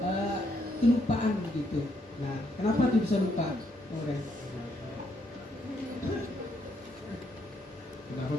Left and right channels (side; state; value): both; normal; correlation 0.74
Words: kelupaan begitu. Nah, kenapa tuh bisa lupa, Nauren? Kenapa